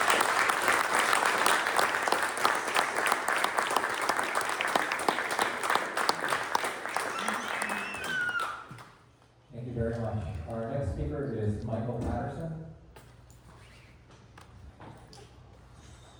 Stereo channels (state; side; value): identical; both; correlation 1.00